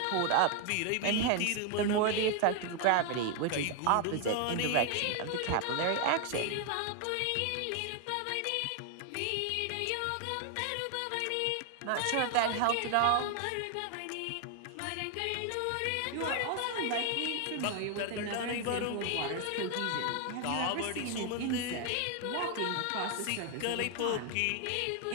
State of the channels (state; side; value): different; both; correlation 0.01